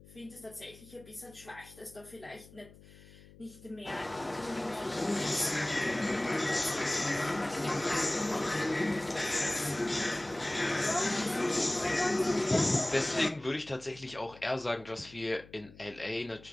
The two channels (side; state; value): left; noise; hum, 21 dB below the sound